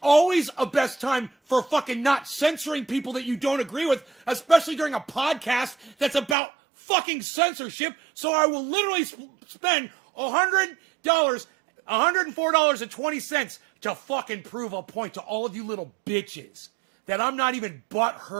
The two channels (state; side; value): drops out; left; at 6.4 s